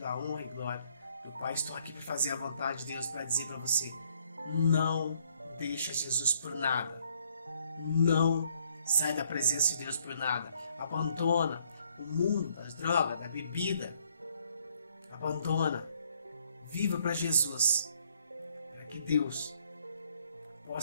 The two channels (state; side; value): inverted; both; correlation -0.68